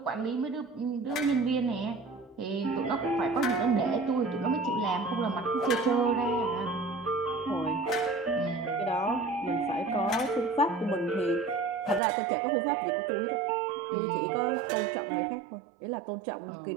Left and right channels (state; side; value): drops out; left; at 12.0 s